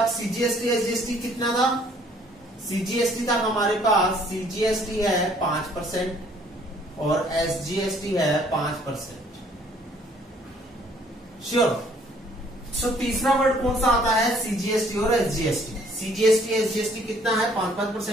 CGST SGST कितना था? सीजीएसटी था हमारे पास, सीजीएसटी है 5% और एसजीएसटी है 5%। श्योर। सो तीसरा वर्ड कौन सा आता है? सीजीएसटी और एसजीएसटी। सीजीएसटी एसजीएसटी कितना है?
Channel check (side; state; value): both; normal; correlation 0.61